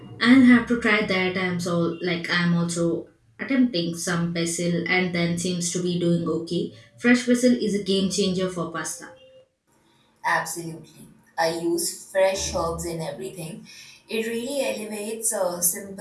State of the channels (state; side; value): identical; both; correlation 1.00